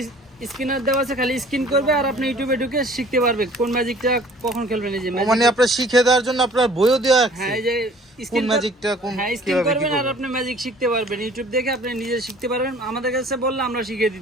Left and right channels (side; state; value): both; normal; correlation 0.51